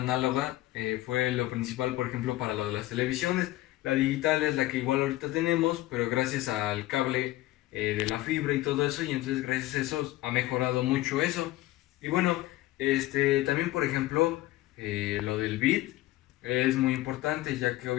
fue lo principal, por ejemplo, para lo de las televisiones. La digital es la que igual ahorita tenemos, pero gracias al cable de la fibra y todo eso, y entonces gracias a eso ha mejorado mucho eso. Y también por ejemplo, lo del bit es muy importante, ya que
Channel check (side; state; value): right; quieter; 17.0 dB